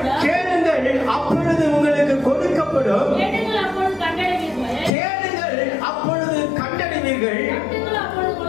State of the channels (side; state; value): right; drops out; at 4.9 s